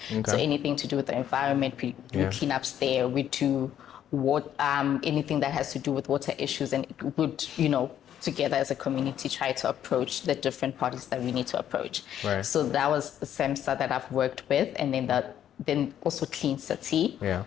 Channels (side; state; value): right; quieter; 10.4 dB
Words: So anything to do with the environment, we clean ups there. We do anything that has to do with water issues, and it would, together as a community, try to approach the different parties that we need to approach. Right. So that was the SEMSA that I've worked with, and then also Clean City. Yeah.